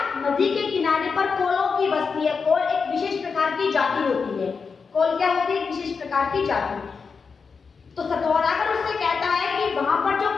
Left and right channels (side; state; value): right; quieter; 5.3 dB